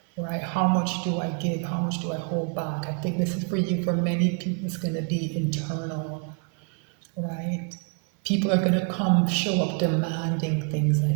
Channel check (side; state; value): left; quieter; 36.0 dB